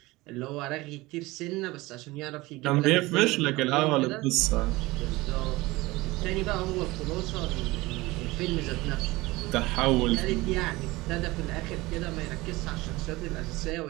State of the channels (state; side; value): quieter; left; 20.8 dB